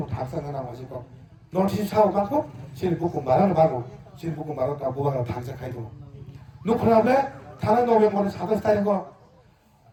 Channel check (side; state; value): both; identical; correlation 1.00